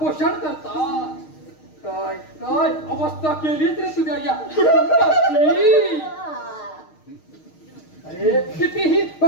करता. काय काय अवस्था केलीच रे तुझ्या या कुटुंबाची. अरे कितीही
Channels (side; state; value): right; late; 6.5 ms